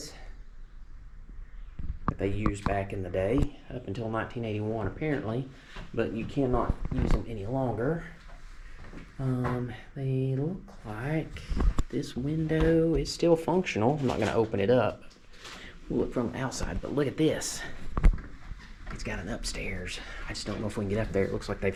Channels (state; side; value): identical; both; correlation 1.00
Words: that they used back in the day, up until 1981 apparently, but you cannot use them any longer. They look like this window is still functional. I'm not going to open it up. We'll look from the outside, but look at this. It's got an upstairs. I just don't know if we can get up there. It looks like they've